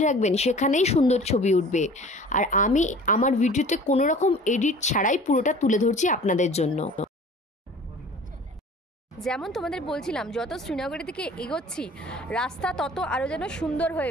রাখবেন সেখানেই সুন্দর ছবি উঠবে। আর আমি আমার ভিডিওতে কোনো রকম এডিট ছাড়াই পুরোটা তুলে ধরছি আপনাদের জন্য। যেমন তোমাদের বলছিলাম, যত শ্রীনগরের দিকে এগোচ্ছি রাস্তা তত আরও যেন সুন্দর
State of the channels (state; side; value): normal; both; correlation 0.45